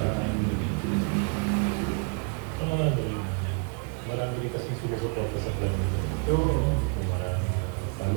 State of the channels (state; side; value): quieter; left; 38.2 dB